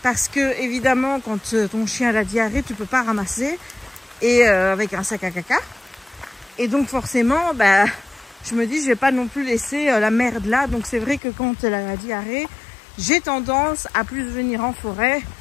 Parce que, évidemment, quand ton chien a la diarrhée, tu peux pas ramasser. Et avec un sac à caca. Et donc, forcément, bah, je me dis, je vais pas non plus laisser la merde là. Donc, c'est vrai que quand elle a la diarrhée, j'ai tendance à plus venir en forêt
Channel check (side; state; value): right; drops out; at 11.2 s